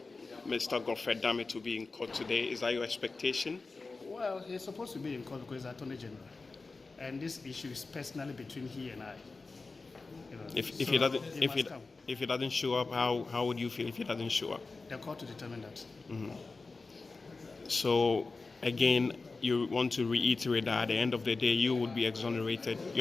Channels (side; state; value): right; quieter; 3.9 dB